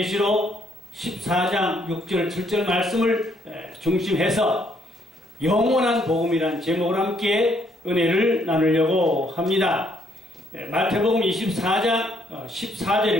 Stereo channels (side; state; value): both; normal; correlation 0.70